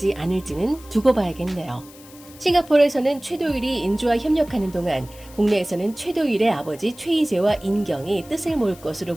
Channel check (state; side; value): noise; left; hiss, 21 dB below the sound